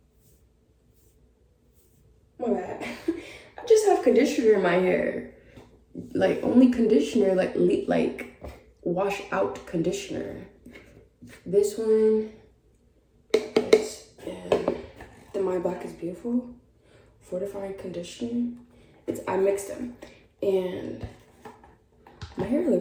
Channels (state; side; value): identical; both; correlation 1.00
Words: My bad. I just have conditioner in my hair. Like, only conditioner, like wash out conditioner. This one is the My Black is Beautiful fortifying conditioner. I mixed them. And my hair